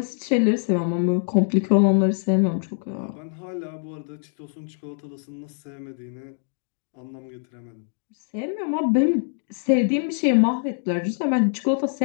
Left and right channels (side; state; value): right; silent; 60 dB below the other